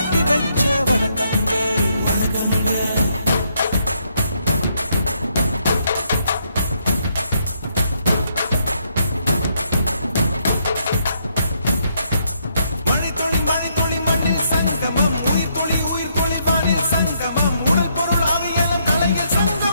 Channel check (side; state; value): both; inverted; correlation -0.74